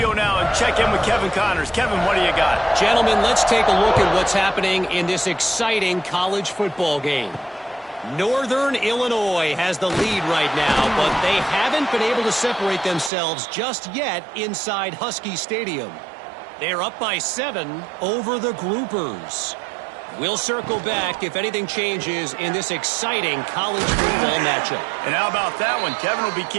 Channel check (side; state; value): left; drops out; at 13.1 s